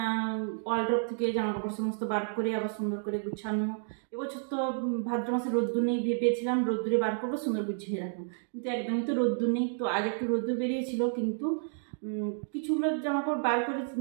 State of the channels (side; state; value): left; silent; digital silence